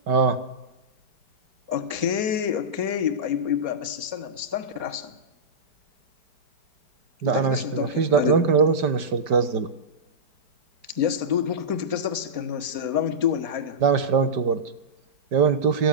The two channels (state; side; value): late; left; 4.3 ms